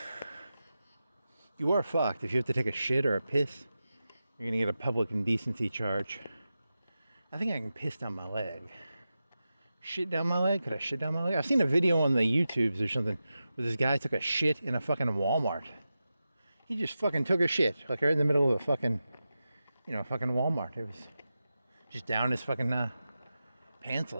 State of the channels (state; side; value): inverted; both; correlation -0.92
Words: You are fucked. If you have to take a shit or a piss, you're gonna get a public indecency charge. I think I can piss down my leg. Shit down my leg? Could I shit down my leg? I've seen a video on the YouTubes or something where this guy took a shit in a fucking Walmart. He just fucking took a shit, like right in the middle of a fucking, fucking Walmart. It was just down his fucking pants